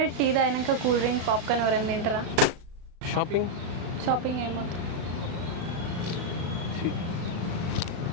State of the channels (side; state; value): left; late; 36 ms